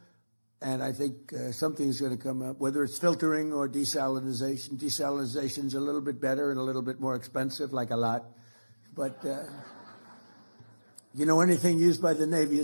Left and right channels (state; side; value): inverted; both; correlation -1.00